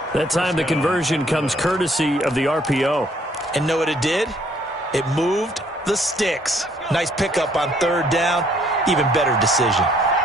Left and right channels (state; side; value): normal; both; correlation 0.64